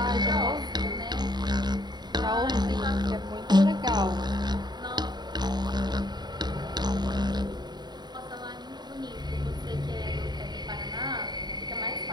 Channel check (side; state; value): left; late; 0.20 ms